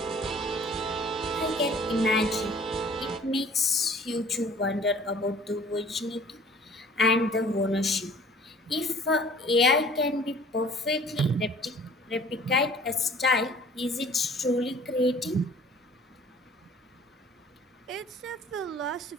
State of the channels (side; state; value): both; normal; correlation 0.51